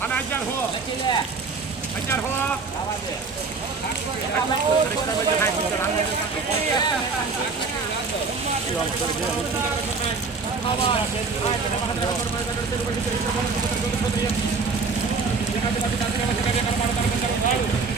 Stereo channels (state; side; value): quieter; left; 4.5 dB